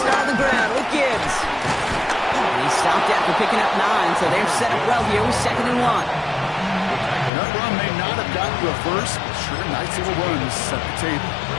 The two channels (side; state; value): right; drops out; at 7.3 s